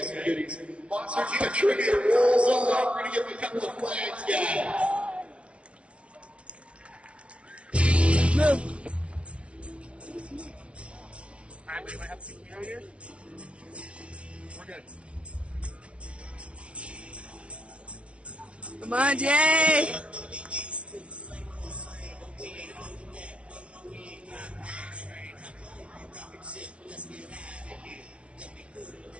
some goodies. Monster Jam trivia rolls on. We're going to give you a couple of flags, guys. Move. All right, we might have some here here. We're good. Come on, Jay!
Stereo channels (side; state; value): left; late; 0.061 ms